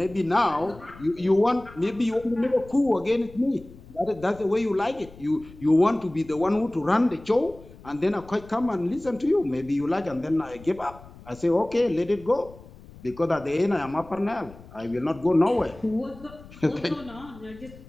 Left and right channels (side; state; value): left; noise; rumble, 20 dB below the sound